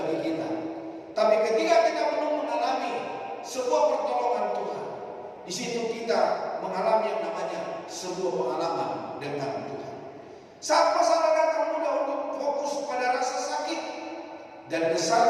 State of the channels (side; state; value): both; identical; correlation 1.00